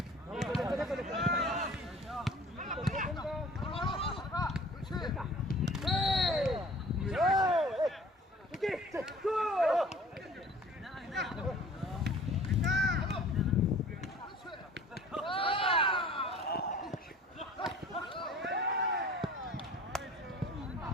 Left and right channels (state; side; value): normal; both; correlation 0.48